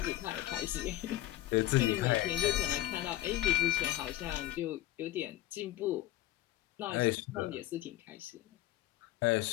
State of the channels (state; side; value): quieter; right; 15.2 dB